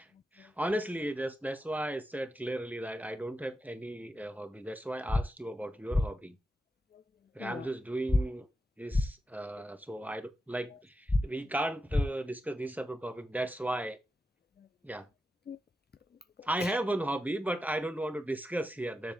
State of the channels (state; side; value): normal; both; correlation 0.89